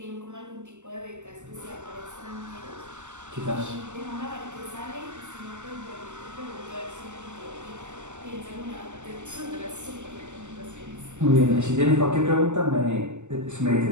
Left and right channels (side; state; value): left; late; 0.84 ms